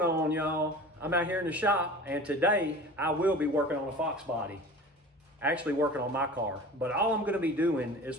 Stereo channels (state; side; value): normal; both; correlation 0.38